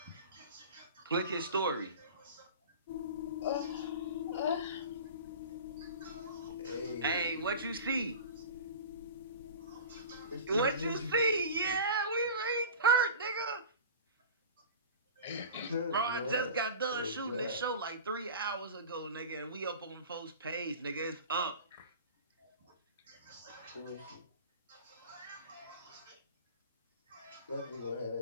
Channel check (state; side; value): inverted; both; correlation -0.35